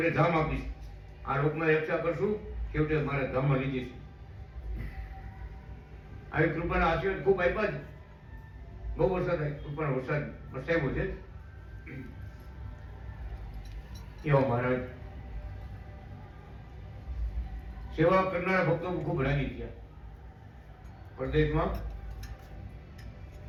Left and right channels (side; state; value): both; identical; correlation 1.00